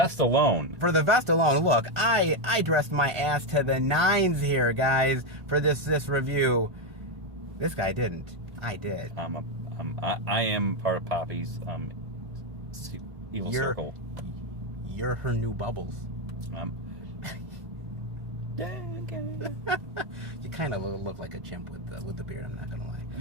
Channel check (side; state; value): left; late; 1.5 ms